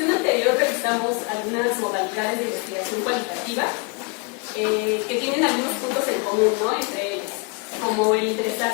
anterior revisamos algunas modalidades de investigación cualitativa que tienen algunos puntos en común, ¿no? Entre ellos, como el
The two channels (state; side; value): quieter; right; 32.5 dB